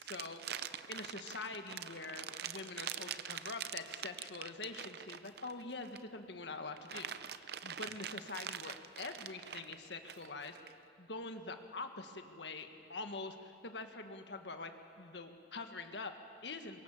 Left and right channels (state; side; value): normal; both; correlation -0.06